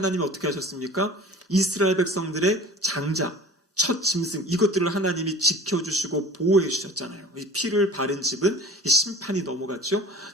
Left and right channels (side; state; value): both; normal; correlation 0.42